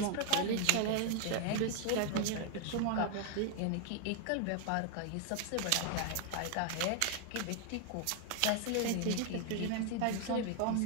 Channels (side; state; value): both; different; correlation 0.00